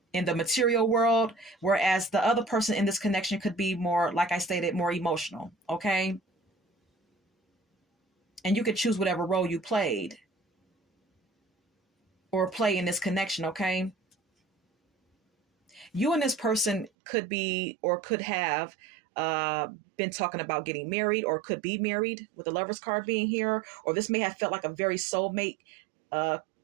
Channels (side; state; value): left; drops out; at 16.9 s